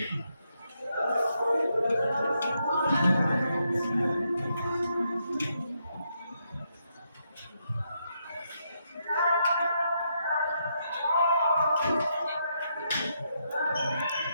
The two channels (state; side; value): inverted; both; correlation -0.79